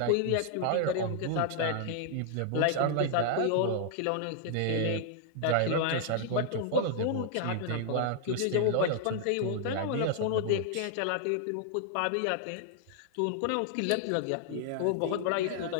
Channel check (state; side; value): different; both; correlation 0.00